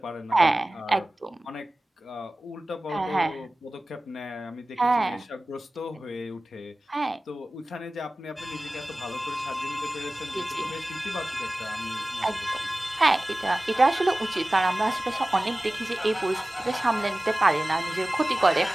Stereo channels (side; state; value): both; normal; correlation 0.97